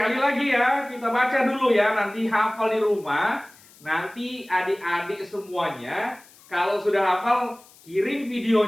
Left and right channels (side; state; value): left; noise; hiss, 25 dB below the sound